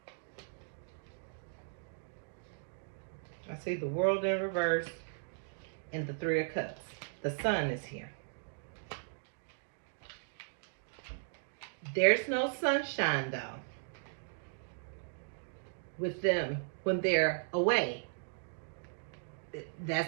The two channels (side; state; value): left; silent; digital silence